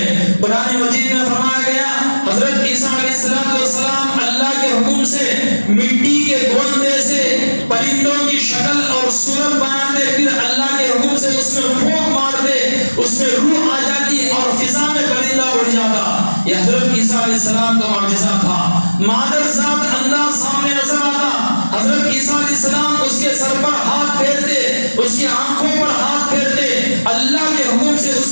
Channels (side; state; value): both; inverted; correlation -1.00